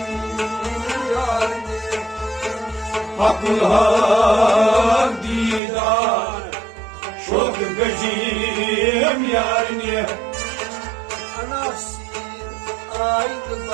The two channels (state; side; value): drops out; left; at 5.6 s